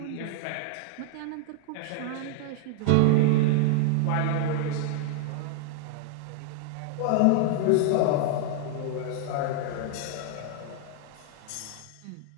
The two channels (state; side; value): different; both; correlation 0.00